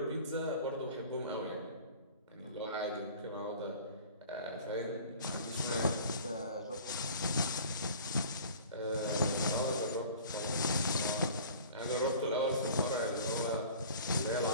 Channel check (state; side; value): inverted; both; correlation -0.45